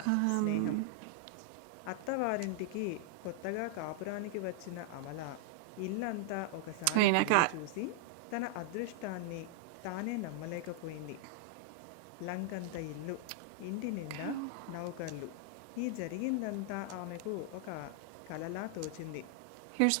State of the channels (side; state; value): both; different; correlation 0.00